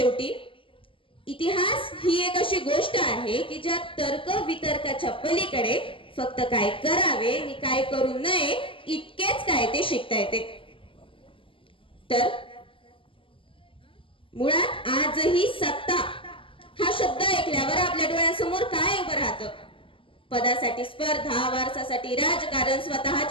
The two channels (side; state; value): right; late; 0.25 ms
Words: इतिहास ही एक अशी गोष्ट आहे की ज्या तर्क वितर्काच्या पलीकडे फक्त काय करावे आणि काय करू नये इतकेच काय ते शिकता येते. तर मुळात आजही सत्ता हा शब्द ऐकल्यावर आपल्या डोळ्यासमोर काय उभं राहतं? पदासाठी स्पर्धा, वारसासाठी राजकारण,